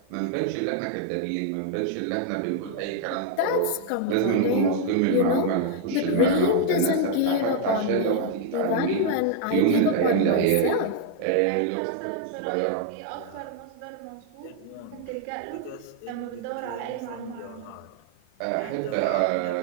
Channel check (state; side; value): different; both; correlation 0.00